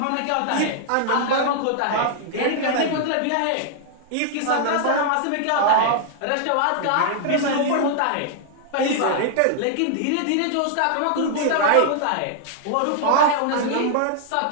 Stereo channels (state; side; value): different; both; correlation -0.01